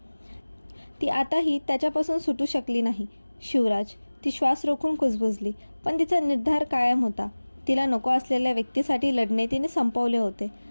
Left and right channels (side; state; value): both; inverted; correlation -1.00